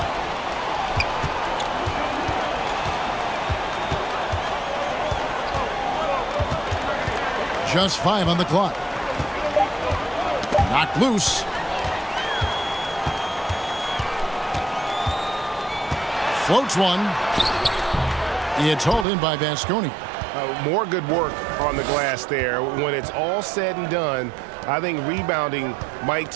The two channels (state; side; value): drops out; left; at 19.1 s